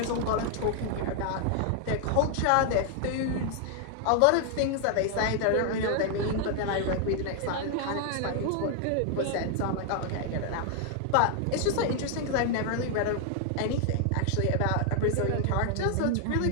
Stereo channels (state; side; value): different; both; correlation 0.00